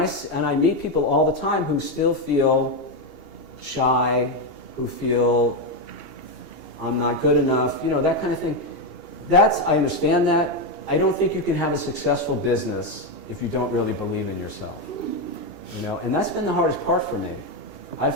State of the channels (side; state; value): right; late; 2.7 ms